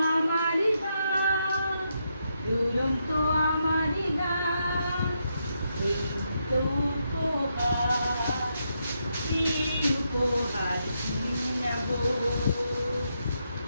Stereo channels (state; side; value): inverted; both; correlation -0.81